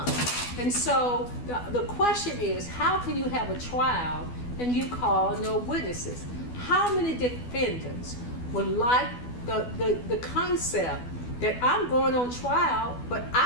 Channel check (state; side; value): late; right; 12 ms